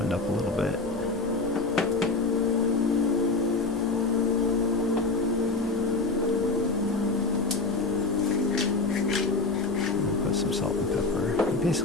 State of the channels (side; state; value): right; quieter; 3.6 dB